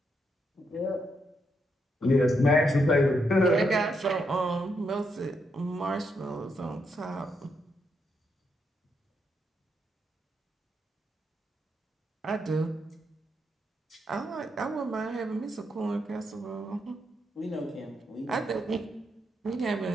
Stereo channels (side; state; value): both; normal; correlation 0.79